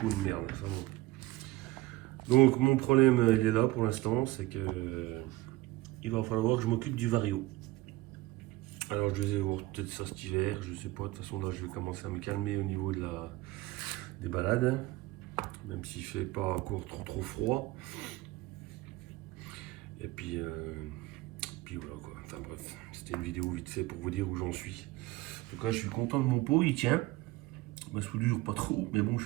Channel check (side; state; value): left; quieter; 18.9 dB